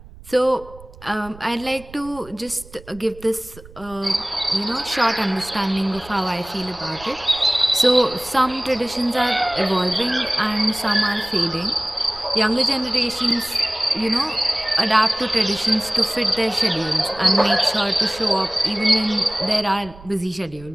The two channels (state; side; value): noise; right; rumble, 20 dB below the sound